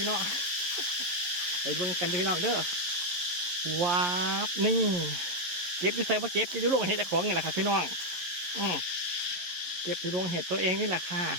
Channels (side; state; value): left; late; 11 ms